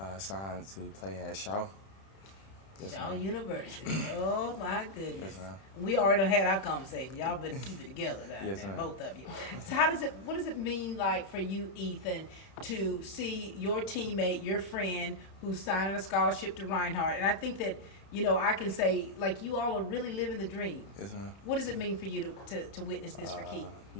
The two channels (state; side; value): late; right; 31 ms